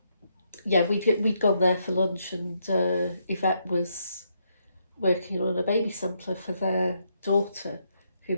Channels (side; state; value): both; inverted; correlation -0.77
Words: We'd gone there for lunch, and Yvette was working on a baby sampler for their daughter, who